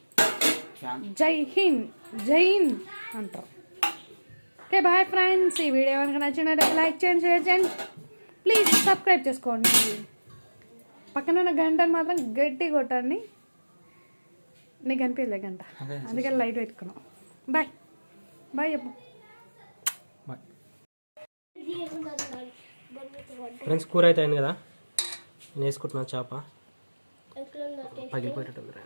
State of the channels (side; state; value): both; inverted; correlation -1.00